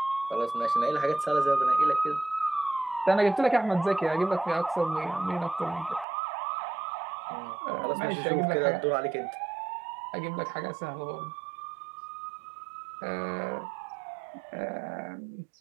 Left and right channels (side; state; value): left; drops out; at 6.1 s